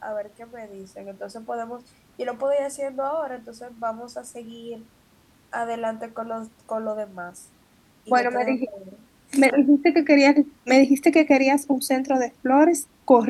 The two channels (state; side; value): identical; both; correlation 1.00